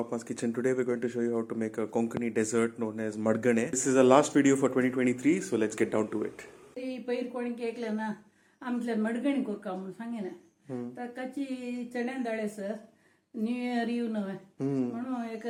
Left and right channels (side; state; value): both; identical; correlation 1.00